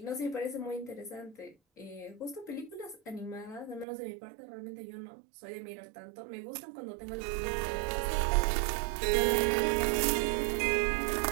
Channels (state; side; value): drops out; left; at 3.9 s